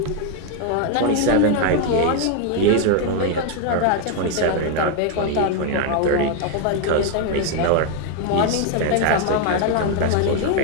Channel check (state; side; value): different; both; correlation 0.01